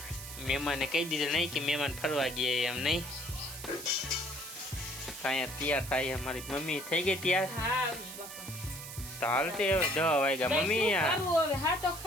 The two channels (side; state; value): right; noise; hiss, 11 dB below the sound